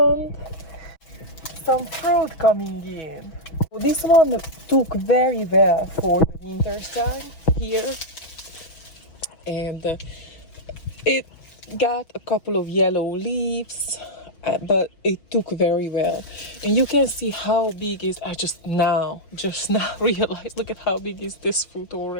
some fruit coming in. This one took very well for the winter time here, and it got a couple of yellow leaves, but it took very well. And you can see how big is. I just now realized. Look at how big is this fruit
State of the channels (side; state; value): right; late; 6.2 ms